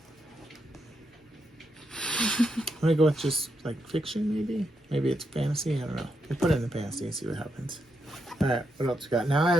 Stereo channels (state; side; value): normal; both; correlation 0.82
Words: gonna go with just like fiction, maybe. Maybe it's fantasy. I don't know. We'll put it in the fantasy and see what happens. All right, what else we got? Now